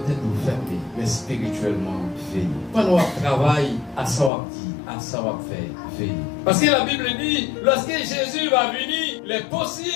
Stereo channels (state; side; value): drops out; right; at 4.3 s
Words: tête vous fermez, mais spirituellement, veillez. Pendant qu'on travaille, à ça on dit, à ça on fait, veillez. Parce que la Bible dit, lorsque Jésus va venir, il est